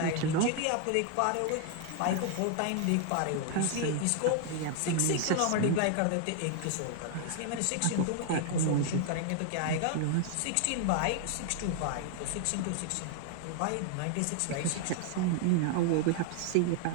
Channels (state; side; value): different; both; correlation 0.00